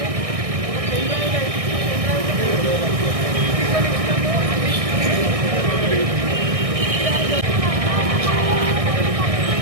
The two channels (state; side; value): late; left; 1.6 ms